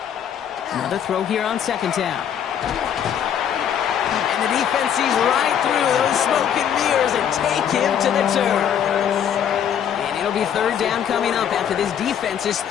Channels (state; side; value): quieter; right; 9.0 dB